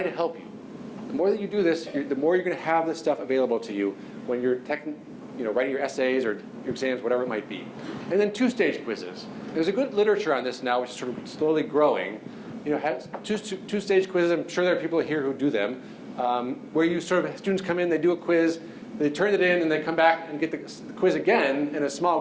to help you. The more that you do this, the more you're going to have this stuff available to you when you're writing your essays or your exams, whatever it might be. And then 2-stage quizzes. There's a good literature on this now, which is slowly growing, have two-stage quizzes. I'm sure there are people here who do them, where you sort of, students come in, they do a quiz, they turn it in, and they come back and get the quiz again. In a small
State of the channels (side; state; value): both; identical; correlation 1.00